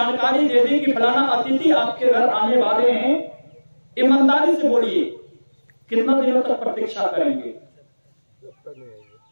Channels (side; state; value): both; inverted; correlation -1.00